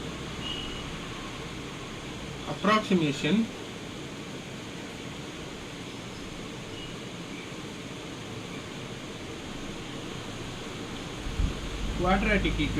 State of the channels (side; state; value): both; identical; correlation 1.00